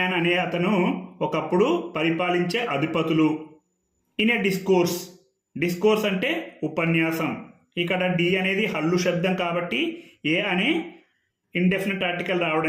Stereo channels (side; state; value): both; identical; correlation 1.00